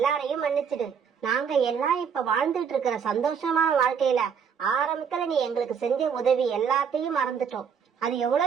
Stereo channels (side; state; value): left; quieter; 7.0 dB